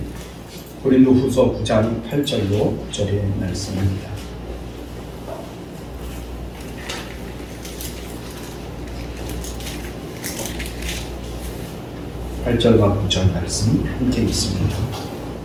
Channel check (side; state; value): both; identical; correlation 1.00